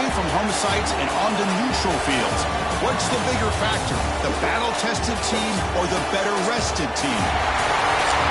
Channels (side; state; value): both; identical; correlation 1.00